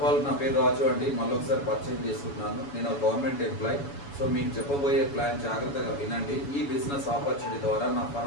ఆల్ నా పేరు రాజు అండి. మళ్ళీ ఒకసారి పరిచయం చేసుకుంటున్నాను. నేను ఒక గవర్నమెంట్ ఎంప్లాయీ. సో మీకు చెప్పబోయే ప్లాన్ జాగ్రత్తగా వినండి. ఈ బిజినెస్ ఆపర్చునిటీ ద్వారా నా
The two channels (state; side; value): late; right; 7.1 ms